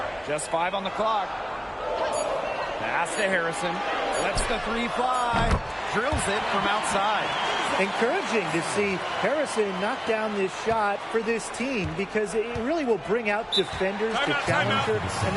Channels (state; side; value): identical; both; correlation 1.00